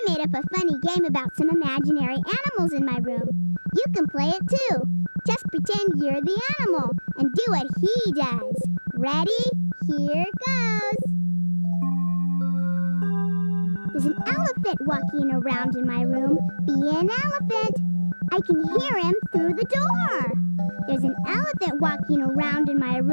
made up a funny game about some imaginary animals in my room. You can play it too. Just pretend you're the animal and do what he does. Ready? Here goes. There's an elephant walking around in my room. Be an elephant. I can hear him through the door. There's an elephant walking around in my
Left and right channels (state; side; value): inverted; both; correlation -1.00